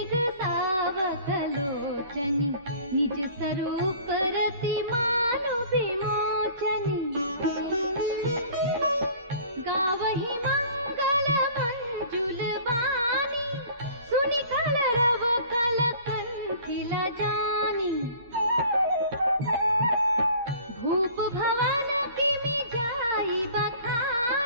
सावकलोचनी निज स्वरूप रति मानु विमोचनी गावहि मंगल मंजुल वाणी सुनि कलरव कल कंठिल जानी भूप भवन किमि जाई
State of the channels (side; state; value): both; inverted; correlation -0.48